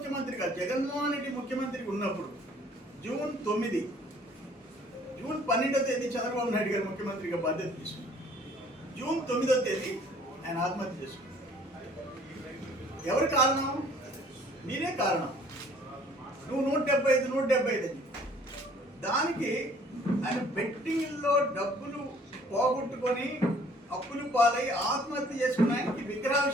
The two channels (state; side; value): normal; both; correlation 0.56